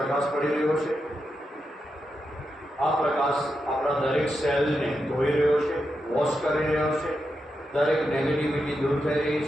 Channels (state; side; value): normal; both; correlation 0.86